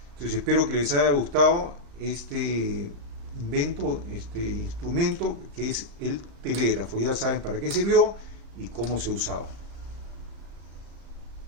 Entonces espero que les haya gustado este invento, este instrumento que es el telégrafo. Ya saben para qué sirvió y cómo se usaba.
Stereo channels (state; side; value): late; left; 35 ms